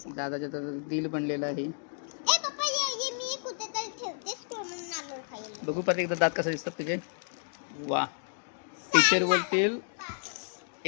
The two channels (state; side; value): silent; right; digital silence